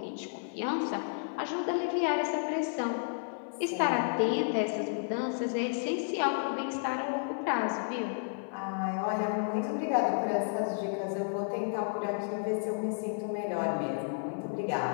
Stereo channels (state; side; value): silent; right; 56 dB below the other